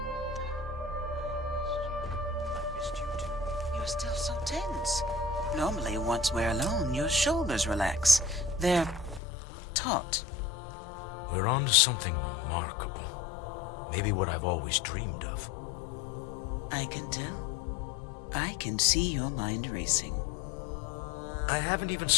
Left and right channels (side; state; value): right; drops out; at 9.2 s